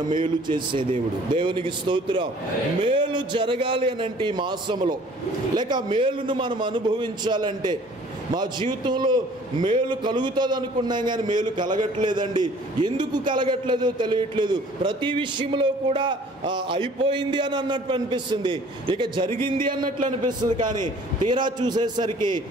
మేలు చేసే దేవుడు. దేవునికి స్తోత్రం. మేలు జరగాలి అని అంటే ఈ మాసంలో, లేక మేలును మనం అనుభవించాలంటే, మా జీవితంలో మేలు కలుగుతుంది అనుకున్నాం కానీ మేలు కలగట్లేదండి. ఎందుకు కలగట్లేదో తెలియట్లేదు. ప్రతి విషయంలో కూడా అయిపోయింది అని అన్నట్టు అనిపిస్తుంది, ఇక జరిగింది అన్నట్లు అనిపిస్తుంది. కానీ తీరా చూసేసరికి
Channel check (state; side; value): normal; both; correlation 0.53